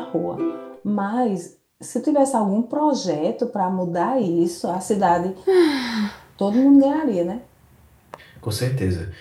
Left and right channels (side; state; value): both; identical; correlation 1.00